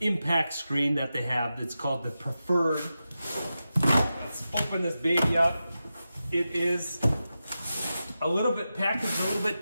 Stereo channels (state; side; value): inverted; both; correlation -0.92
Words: screen that they have. It's called the Preferred. Let's open this baby up. It is a little bit packaged, a little bit